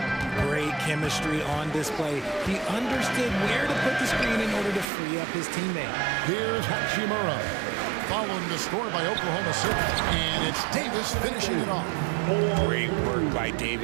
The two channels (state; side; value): drops out; left; at 4.9 s